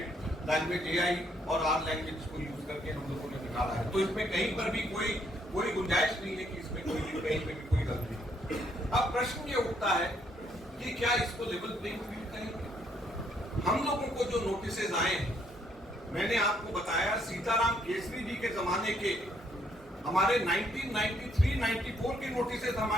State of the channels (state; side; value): normal; both; correlation 0.70